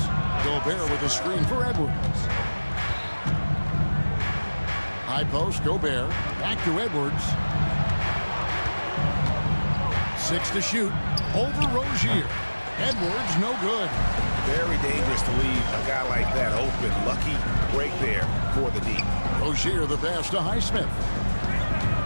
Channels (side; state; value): both; inverted; correlation -1.00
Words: Gobert with a screen for Edwards. High post, Gobert. Back to Edwards. 6 to shoot. Over Rozier. Edwards, no good. Very dangerous to leave a guy like that open. Lucky break there for the D. Rozier the pass to Highsmith.